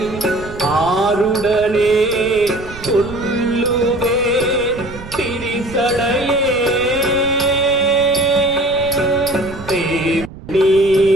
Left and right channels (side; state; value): right; noise; rumble, 15 dB below the sound